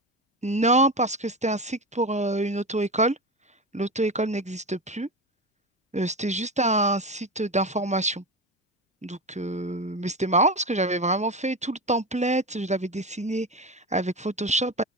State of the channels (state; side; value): normal; both; correlation 0.21